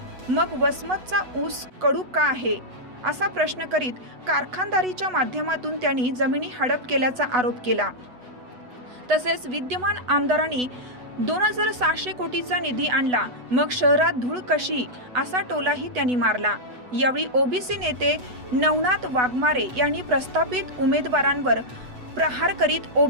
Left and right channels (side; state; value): left; late; 8.1 ms